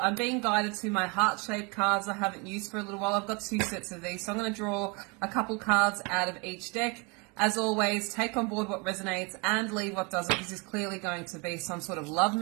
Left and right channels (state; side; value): quieter; left; 30.6 dB